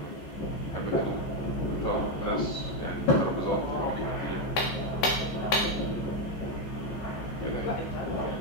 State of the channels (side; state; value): right; late; 15 ms